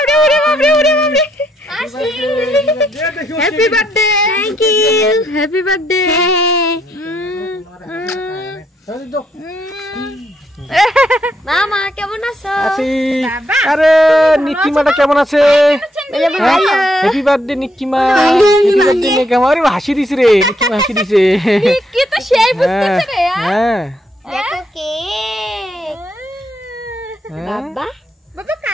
ওরে বাপরে, ওরে বাপরে। Happy birthday. Thank you. Happy birthday. মামা কেমন আছো? আরে নিকিমাটা কেমন আছে? Happy birthday Nikima. Happy birthday Nikima. আরে হাসি দিছে রে, নিকিমা হাসি দিছে। কি তো সেই বুঝতেছ রে। হ্যাঁ দেখো কেক। বাবা, বাবা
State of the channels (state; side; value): normal; both; correlation 0.75